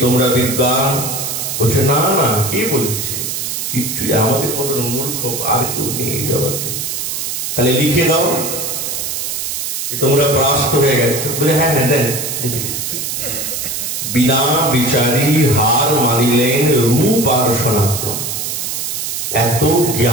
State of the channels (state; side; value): noise; right; hiss, 3 dB below the sound